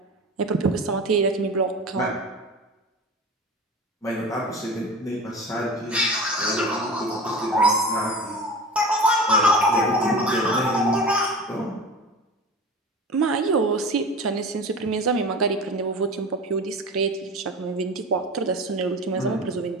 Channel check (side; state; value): both; normal; correlation 0.33